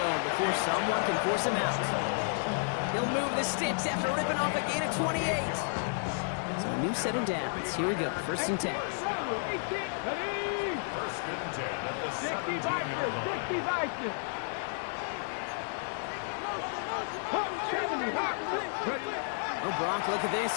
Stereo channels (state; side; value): silent; right; digital silence